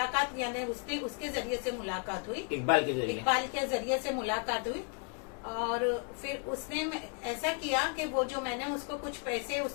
यानी उसके जरिए से मुलाकात हुई, इकबाल के जरिए से मुलाकात हुई। और फिर उसने ऐसा किया कि वो जो मैंने उसको कुछ पैसे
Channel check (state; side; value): quieter; right; 38.1 dB